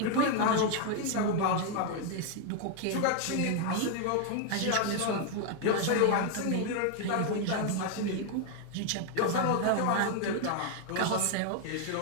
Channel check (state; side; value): different; both; correlation 0.00